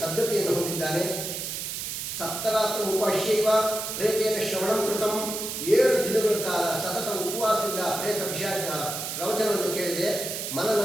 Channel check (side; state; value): right; noise; hiss, 5 dB below the sound